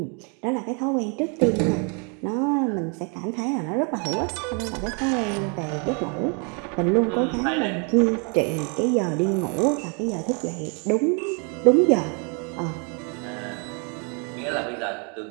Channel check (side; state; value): left; quieter; 36.1 dB